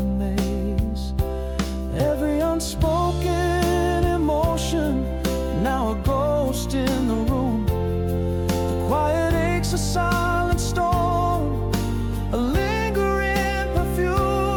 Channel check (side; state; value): both; identical; correlation 1.00